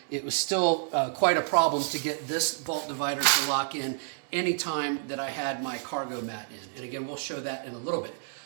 it was still quite a problem to get this vault divider to lock in anytime that I had my cargo mat in. And again, we'll show that in a little bit.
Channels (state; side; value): silent; left; 58 dB below the other